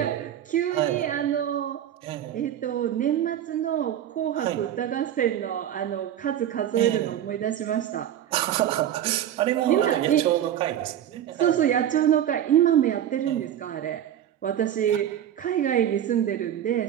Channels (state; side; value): quieter; left; 10.8 dB